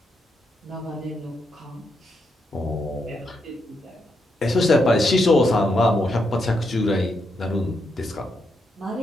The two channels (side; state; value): both; normal; correlation 0.81